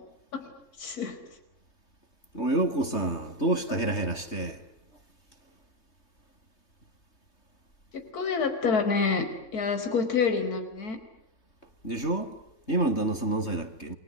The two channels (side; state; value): right; late; 3.3 ms